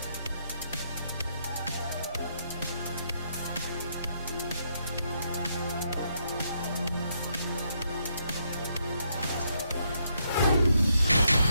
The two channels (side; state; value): both; inverted; correlation -0.75